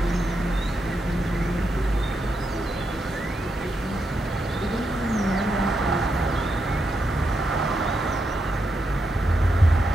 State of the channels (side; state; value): both; normal; correlation 0.84